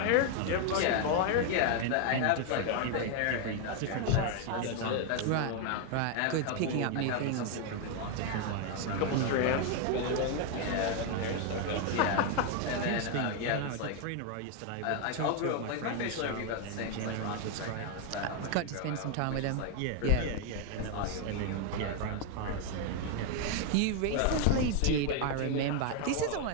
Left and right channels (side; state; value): both; different; correlation 0.00